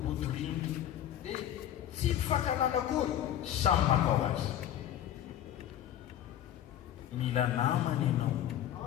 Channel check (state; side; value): quieter; right; 11.2 dB